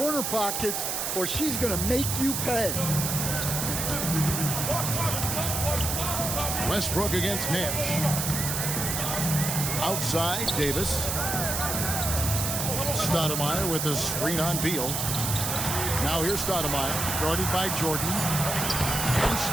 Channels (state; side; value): noise; right; hiss, 1 dB below the sound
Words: pockets or she's going to make you pay. Westbrook against Nash. Outside, Davis. Stoudemire with a screen on Beal. Now here's Stoudemire, guarded by Jordan. And